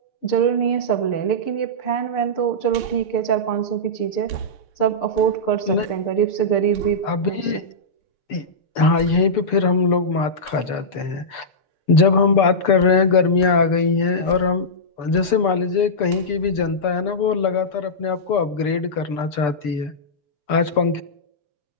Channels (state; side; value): late; right; 6.8 ms